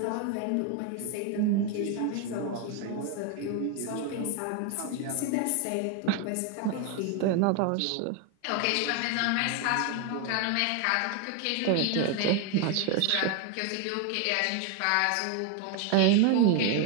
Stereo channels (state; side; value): different; both; correlation 0.01